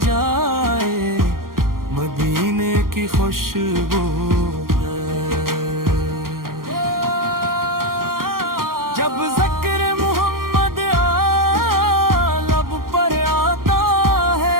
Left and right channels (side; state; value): left; late; 0.91 ms